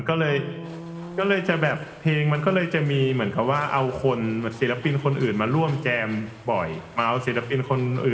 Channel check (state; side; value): identical; both; correlation 1.00